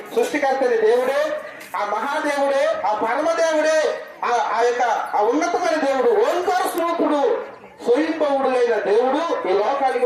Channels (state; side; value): identical; both; correlation 1.00